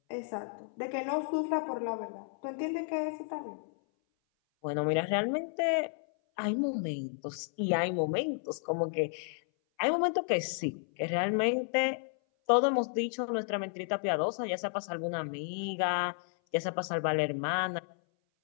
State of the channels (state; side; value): silent; right; 56 dB below the other